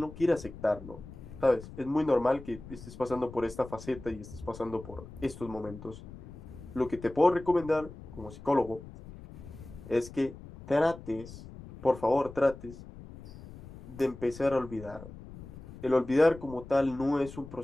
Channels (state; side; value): noise; left; rumble, 15 dB below the sound